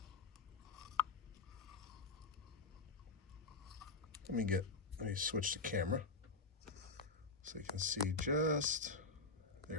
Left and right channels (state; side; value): quieter; right; 3.7 dB